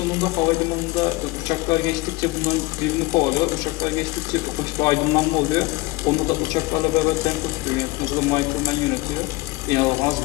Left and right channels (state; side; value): quieter; right; 21.8 dB